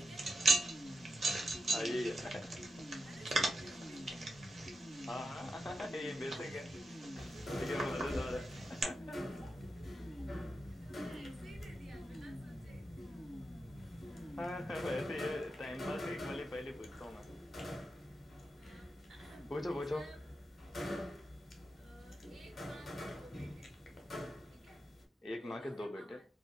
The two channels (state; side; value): normal; both; correlation 0.87